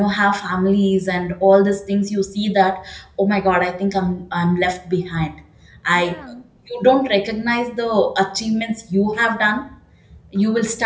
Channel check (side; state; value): both; identical; correlation 1.00